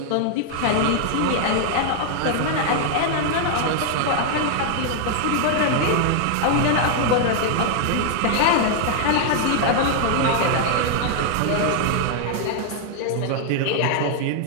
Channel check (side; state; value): both; different; correlation 0.00